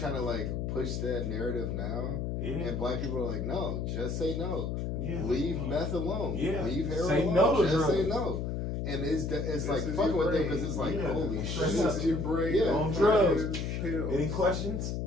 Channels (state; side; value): noise; left; hum, 2 dB below the sound